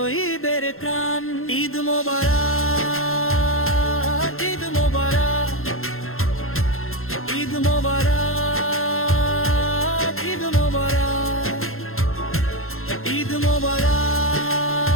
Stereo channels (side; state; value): right; late; 0.61 ms